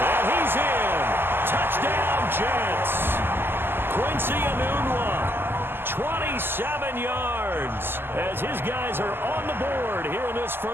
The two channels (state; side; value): late; left; 0.10 ms